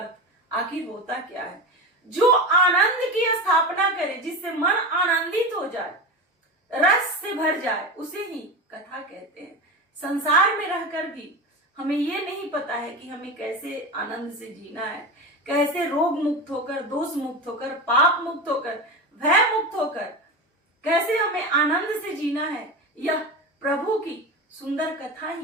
आखिर होता क्या है। जो आनंद की स्थापना करे, जिससे मन आनंदित हो जाए, रस से भर जाए, उसे ही कथा कहते हैं। संसार में रहकर भी हमें ये नहीं पता है कि हमें कैसे आनंद से जीना है, कैसे रोग मुक्त होकर, दोष मुक्त होकर, पाप मुक्त होकर, भय मुक्त होकर कैसे हमें आनंद से जीना है, यह प्रभु की सुंदर कथा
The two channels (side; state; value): both; normal; correlation 0.23